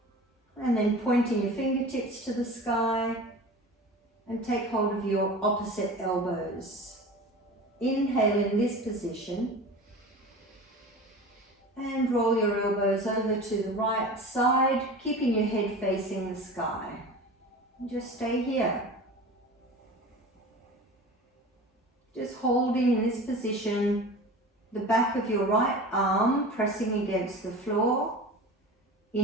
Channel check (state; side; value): normal; both; correlation 0.35